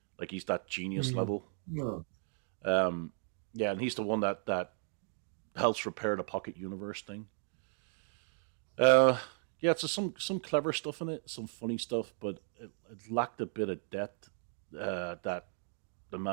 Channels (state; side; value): silent; left; 54 dB below the other